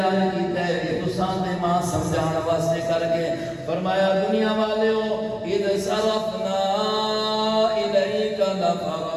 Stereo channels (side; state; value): both; identical; correlation 1.00